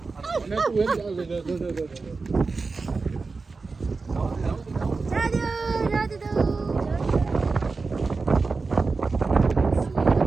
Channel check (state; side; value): quieter; left; 4.2 dB